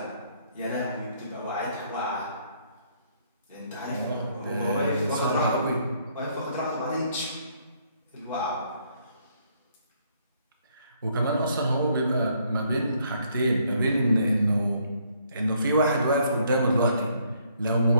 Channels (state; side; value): inverted; both; correlation -0.68